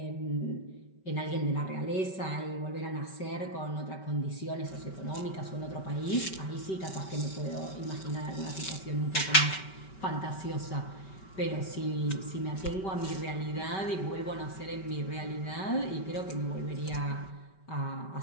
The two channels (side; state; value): right; late; 5.2 ms